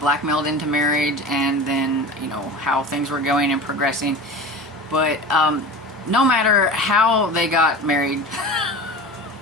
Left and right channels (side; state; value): both; normal; correlation 0.33